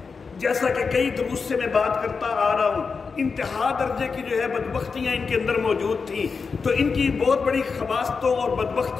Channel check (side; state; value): right; quieter; 5.1 dB